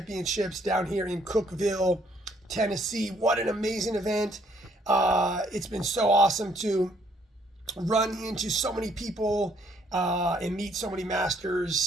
down here in Cookeville, Tennessee. What an amazing event! It's been so awesome to run into so many people and meet so many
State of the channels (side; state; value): both; normal; correlation 0.66